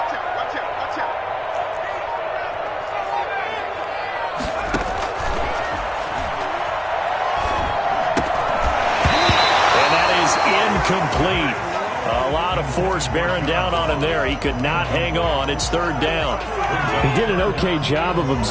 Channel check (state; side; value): identical; both; correlation 1.00